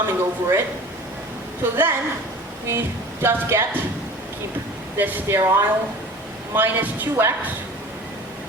over it. So then, we just get, keep this sterile, minus 2x,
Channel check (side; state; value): both; normal; correlation 0.41